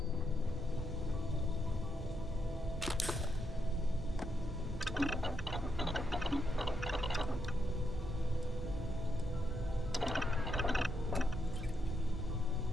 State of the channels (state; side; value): normal; both; correlation 0.81